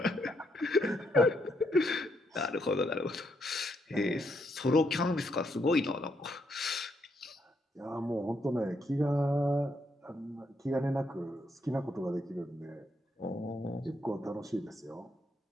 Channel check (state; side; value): normal; both; correlation 0.77